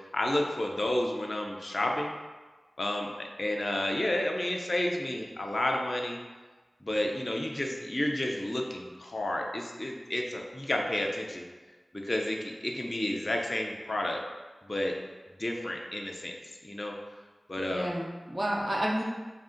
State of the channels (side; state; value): both; normal; correlation 0.96